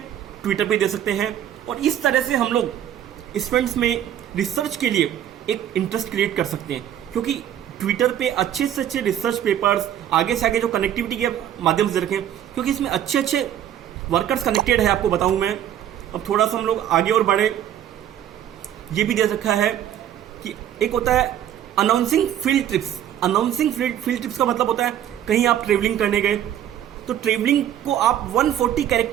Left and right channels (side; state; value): left; quieter; 10.8 dB